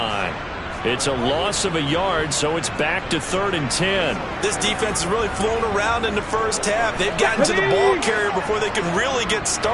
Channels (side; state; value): both; identical; correlation 1.00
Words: It's a loss of a yard, so it's back to 3rd and 10. This defense has really flown around in the first half. They've gotten to the ball carrier before they can really get